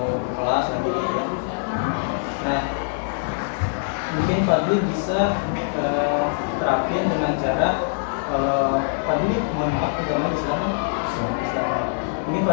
ke kelas lagi gitu ya. Nah, mungkin Fadli bisa terapin dengan cara Fadli, mohon maaf agama Islam. Mungkin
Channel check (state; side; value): silent; right; 63 dB below the other